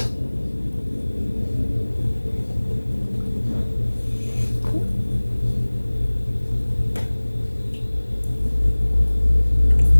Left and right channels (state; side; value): inverted; both; correlation -1.00